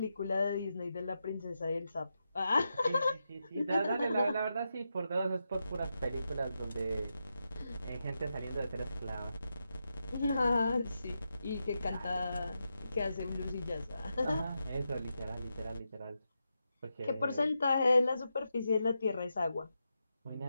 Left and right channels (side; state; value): both; inverted; correlation -0.87